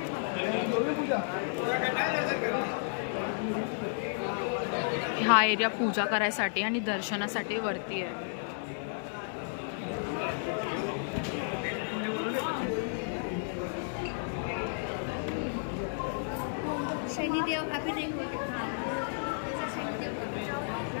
हा एरिया पूजा करायसाठी आणि दर्शनासाठी वरती आहे।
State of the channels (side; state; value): right; silent; digital silence